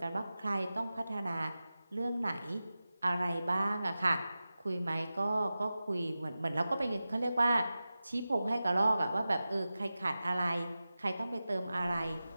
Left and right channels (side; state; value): both; inverted; correlation -0.95